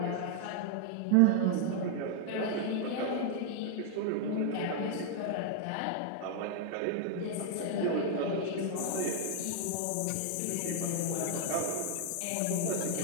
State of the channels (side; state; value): both; different; correlation 0.00